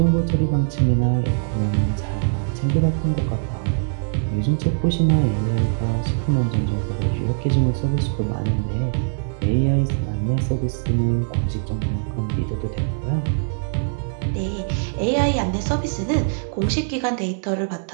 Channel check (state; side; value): silent; left; 64 dB below the other